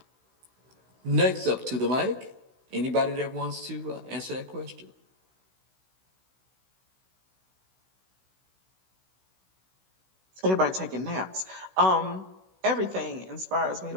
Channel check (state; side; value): late; left; 16 ms